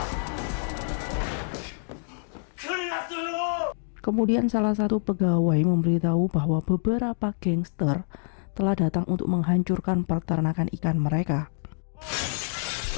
Kemudian salah satu pegawai memberitahu bahwa beberapa gangster telah datang untuk menghancurkan peternakan ikan mereka.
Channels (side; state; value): right; silent; 60 dB below the other